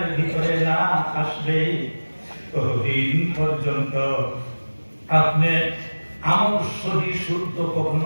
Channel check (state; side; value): inverted; both; correlation -1.00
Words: ভিতরে না আসবে, ততদিন পর্যন্ত আপনি আমল সহি শুদ্ধ